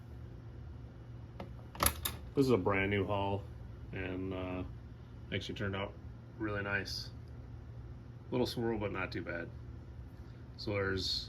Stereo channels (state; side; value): identical; both; correlation 1.00